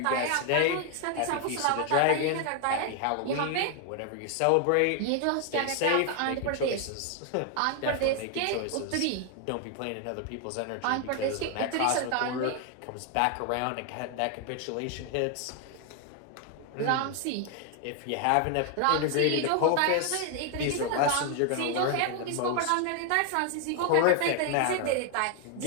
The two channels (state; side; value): different; both; correlation 0.00